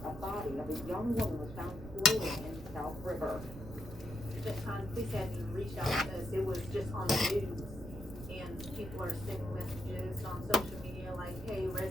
a body of a young woman was found floating in South River. The time police hadn't even reached out to us. It was just on the news. And people are sending messages on social media like, hey,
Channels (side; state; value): right; noise; rumble, 13 dB below the sound